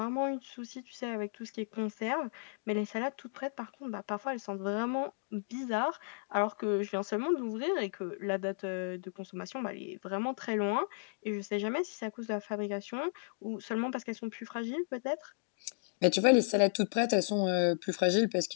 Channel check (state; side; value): silent; right; digital silence